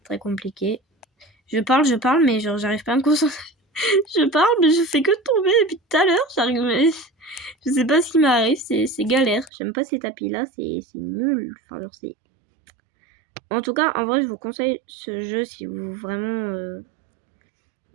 très compliqué. Je parle, mais genre, j'arrive pas à me concentrer. Je parle, mais je fais que tomber depuis tout à l'heure. J'arrive, mais je sais pas ce qui m'arrive. C'est galère. J'aime pas ces tapis-là. C'est nul. Enfin, genre, c'est... En tout cas, en vrai, je vous conseille ce jeu si vous vraiment...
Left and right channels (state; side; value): drops out; left; at 9.5 s